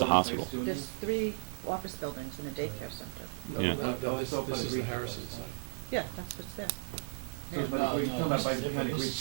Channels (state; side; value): silent; left; digital silence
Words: hospital. There's 3 office buildings and a daycare center. No, Yeah. no, this is the Harrison site. Yeah, that's what's there. You're talking about by behind the Greek